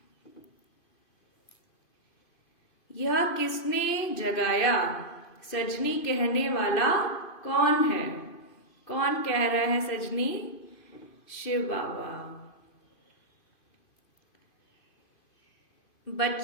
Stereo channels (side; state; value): right; late; 2.5 ms